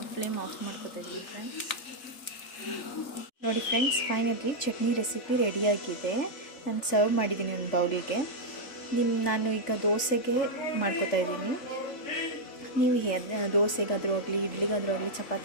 ಫ್ಲೇಮ್ ಆಫ್ ಮಾಡ್ಕೋತಾ ಇದ್ದೀನಿ ಫ್ರೆಂಡ್ಸ್. ನೋಡಿ ಫ್ರೆಂಡ್ಸ್, ಫೈನಲಿ ಚಟ್ನಿ ರೆಸಿಪಿ ರೆಡಿಯಾಗಿದೆ. ನಾನು ಸರ್ವ್ ಮಾಡಿದ್ದೀನಿ ಒಂದು ಬೌಲಿಗೆ. ನಾನು ಈಗ ದೋಸೆಗೆ ಮಾಡ್ಕೋತಾ ಇದ್ದೀನಿ. ನೀವು ದೋಸೆಗಾದರೂ ಆಗಲಿ, ಇಡ್ಲಿಗಾದರೂ ಆಗಲಿ,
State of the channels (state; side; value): late; right; 3.5 ms